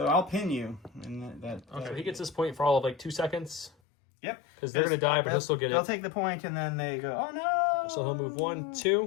I'll pin you. And that Okay, so he gets this point for all of like 2 seconds. Yep. Because they're going to die, but he'll still get They'll it. take the point, and then they go, oh no! So he'll move 1,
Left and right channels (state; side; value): drops out; right; at 3.7 s